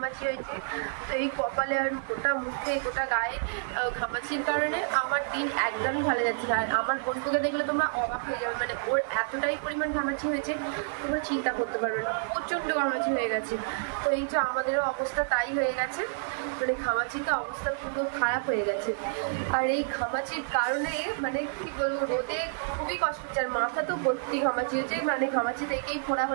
হয়েছে। তো এই কপালে আর গোটা মুখে গোটা গায়ে ঘামাচির কারণে আমার দিন একদমই ভালো যাচ্ছে না। আর আমার বোনকে দেখলে তোমরা অবাক হয়ে যাবে, ওর এতটাই পরিমাণ ঘামাচি হয়েছে তোমরা চিন্তা করতে পারবে না, প্রচণ্ড ঘামাচি হয়ে গেছে। তো এই যে আমাদেরও অবস্থা তাই হয়ে গেছে, ঘামাচিতে অবস্থা পুরো খারাপ হয়ে গেছে। আর এই ঘামাচির কারণে কি বলবো, রোদে খুবই কষ্ট হচ্ছে। আর মাথা তো ভর্তি ঘামাচি হয়েছে, ঘামাচি থেকেই ফোড়া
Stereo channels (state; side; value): silent; left; digital silence